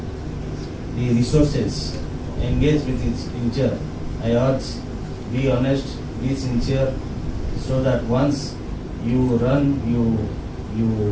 the resources engaged with its Incture. I urge, be honest, be sincere, so that once you run,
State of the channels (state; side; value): identical; both; correlation 1.00